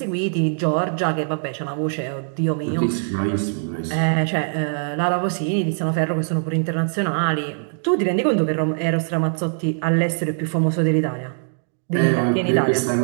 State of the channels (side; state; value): left; silent; digital silence